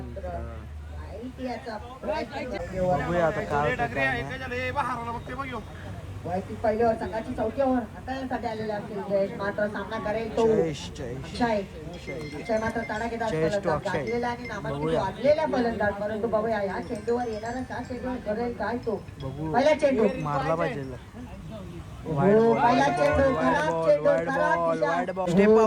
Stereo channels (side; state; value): both; identical; correlation 1.00